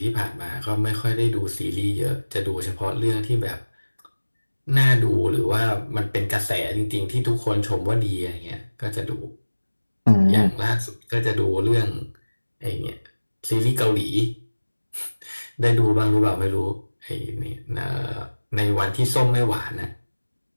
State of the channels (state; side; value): inverted; both; correlation -1.00